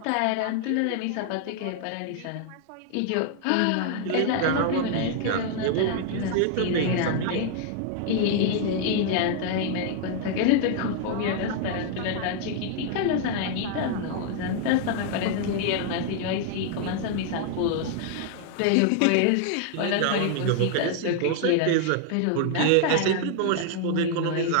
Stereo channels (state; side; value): different; both; correlation 0.00